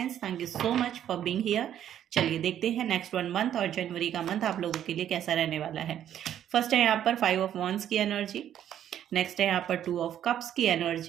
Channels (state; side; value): quieter; left; 10.5 dB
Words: thank you so much for being here. चलिए देखते हैं नेक्स्ट 1 मंथ और जनवरी का मंथ आप लोगों के लिए कैसा रहने वाला है। फर्स्ट है यहाँ पर 5 ऑफ वॉन्ड्स की एनर्जी, नेक्स्ट है यहाँ पर 2 ऑफ कप्स की